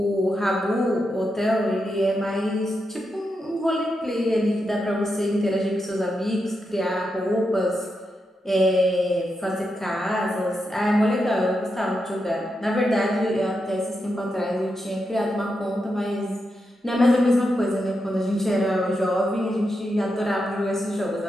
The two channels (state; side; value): normal; both; correlation 0.86